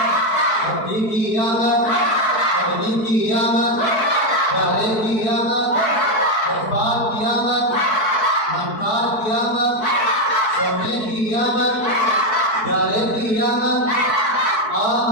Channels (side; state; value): right; late; 4.6 ms